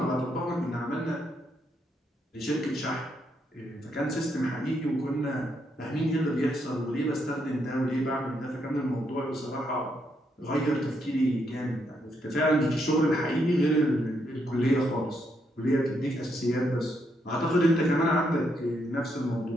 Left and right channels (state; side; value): normal; both; correlation 0.77